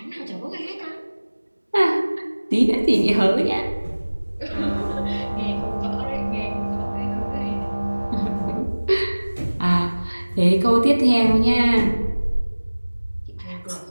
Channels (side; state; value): both; inverted; correlation -1.00